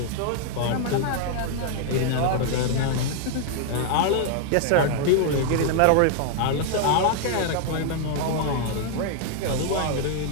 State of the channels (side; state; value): both; different; correlation 0.00